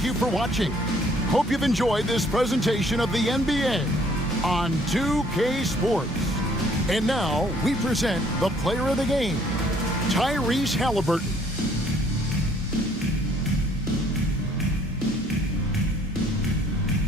you for watching. Hope you've enjoyed this presentation of the NBA on 2K Sports. And now, we present the player of the game, Tyrese Halliburton.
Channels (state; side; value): normal; both; correlation 0.61